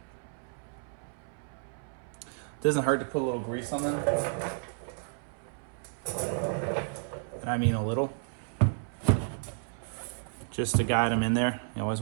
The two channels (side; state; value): left; silent; 57 dB below the other